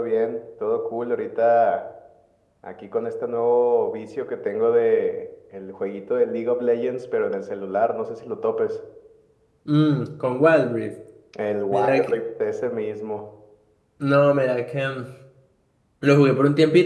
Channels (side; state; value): both; identical; correlation 1.00